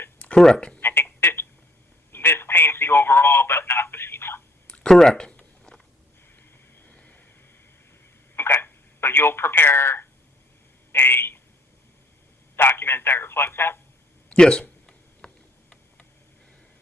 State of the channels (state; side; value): normal; both; correlation 0.65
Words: Correct. I think this paints the overall, but not the FEMA. Correct. Okay, so you'll prepare a document that reflects that? Yes.